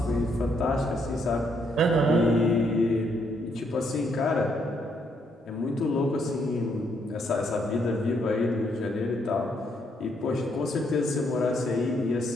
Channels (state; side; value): normal; both; correlation 0.73